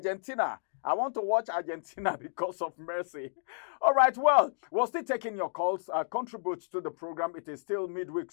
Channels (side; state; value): right; silent; digital silence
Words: I want to watch Argentina because of Messi. All right, well, we're still taking your calls. Contribute to the program. It is still Midweek